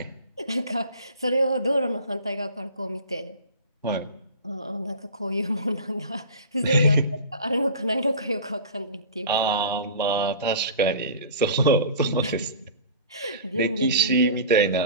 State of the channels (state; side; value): inverted; both; correlation -0.37